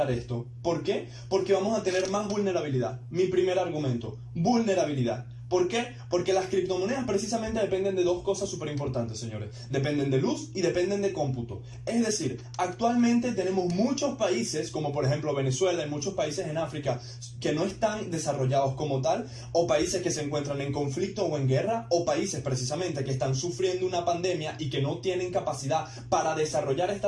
esto. ¿Por qué? Porque vamos a tener más vulnerabilidad. Mi primer argumento, vulnerabilidad. ¿Por qué? Porque las criptomonedas precisamente dependen de 2 cosas súper importantes, señores. Dependen de luz y dependen de cómputo. Es decir, actualmente tenemos muchos países, como por ejemplo Venezuela y muchos países en África, que no están desarrollados como tal, o países que se encuentran en conflicto o en guerra, o países precisamente que están sufriendo una pandemia y que no tienen capacidad para desarrollar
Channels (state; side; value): identical; both; correlation 1.00